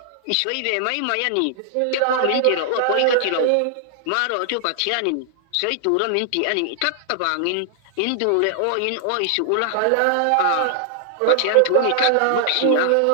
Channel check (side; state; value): both; different; correlation -0.01